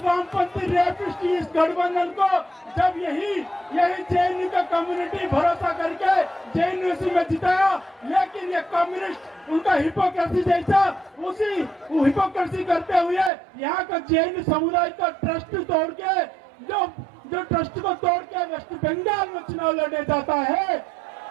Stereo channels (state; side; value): drops out; left; at 13.3 s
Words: वामपंथी रेपिस्ट इस गठबंधन को जब यही JNU का कम्युनिटी भरोसा करके JNU में जिताया, लेकिन ये कम्युनिस्ट उनका हिपोक्रेसी जैसा उसी हिपोक्रेसी करते हुए यहाँ का JNU समुदाय का ट्रस्ट तोड़ के जो ट्रस्ट को तोड़ के वेस्ट बंगाल में चुनाव लड़ने जाता है।